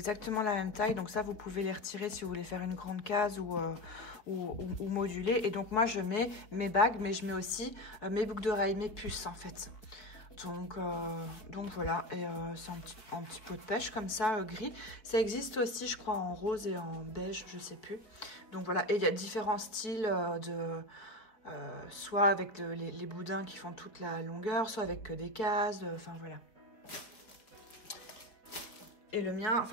la même taille. Donc ça, vous pouvez les retirer si vous voulez faire une grande case ou moduler. Et donc moi, je mets mes bagues, mais je mets aussi mes boucles d'oreilles, mes puces en fait. Donc voilà. Et c'est un petit pot de pêche comme ça, gris. Ça existe aussi, je crois, en rose et en beige, je sais plus. Donc voilà. Et il y a différents styles soit avec les boudins qui font toute la longueur, soit avec que des cases, enfin voilà. Et le mien,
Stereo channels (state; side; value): late; right; 4.6 ms